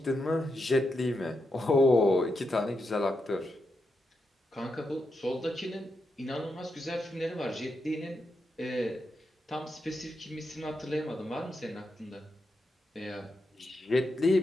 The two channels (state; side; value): normal; both; correlation 0.84